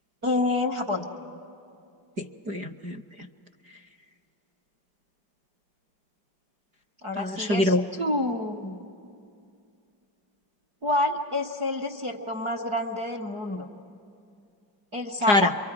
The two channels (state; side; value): late; left; 4.9 ms